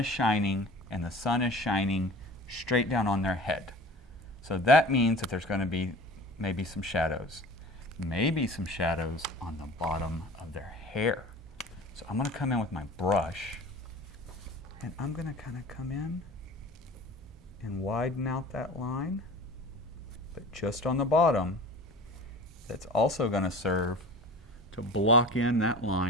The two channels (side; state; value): both; normal; correlation 0.40